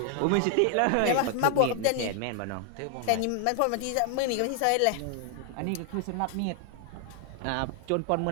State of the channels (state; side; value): different; both; correlation 0.00